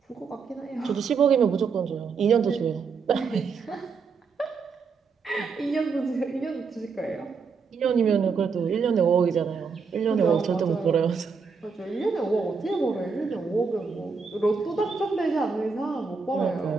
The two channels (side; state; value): left; quieter; 5.3 dB